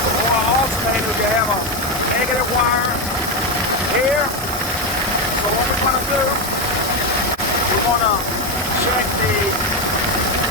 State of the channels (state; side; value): normal; both; correlation 0.10